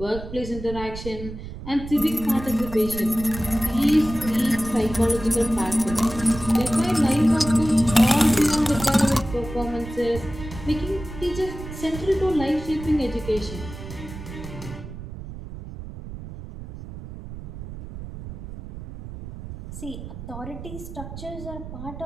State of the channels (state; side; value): noise; right; rumble, 11 dB below the sound